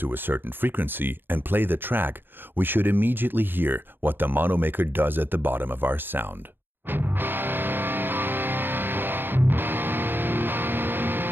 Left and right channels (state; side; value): late; left; 0.099 ms